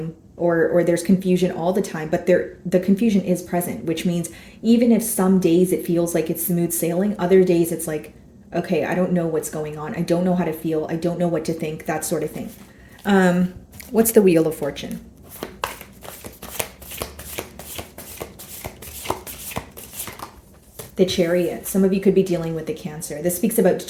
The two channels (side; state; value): both; identical; correlation 1.00